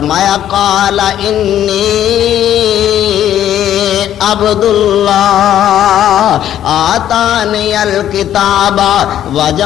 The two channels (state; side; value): quieter; right; 11.2 dB